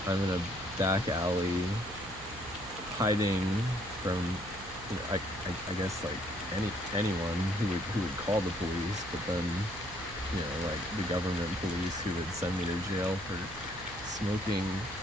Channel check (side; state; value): right; noise; hum, 16 dB below the sound